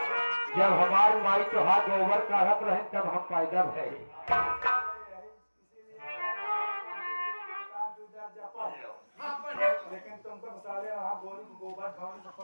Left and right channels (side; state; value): both; inverted; correlation -1.00